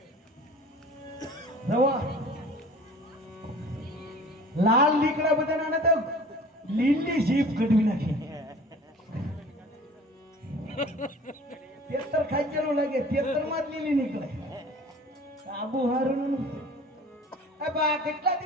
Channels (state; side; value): normal; both; correlation 0.45